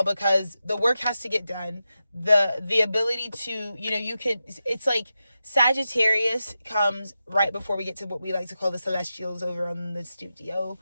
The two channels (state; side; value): inverted; both; correlation -0.91